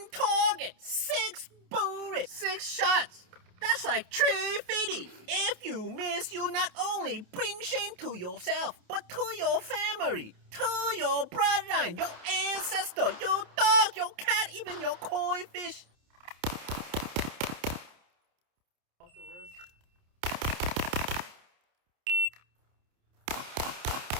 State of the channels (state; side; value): late; left; 28 ms